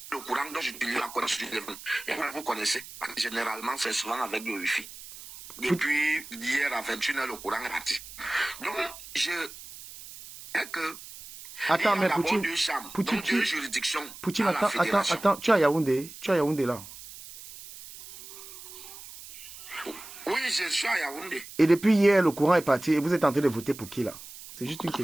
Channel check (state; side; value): noise; right; hiss, 15 dB below the sound